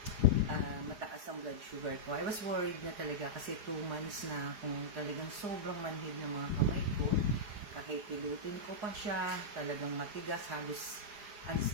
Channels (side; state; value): left; late; 4.9 ms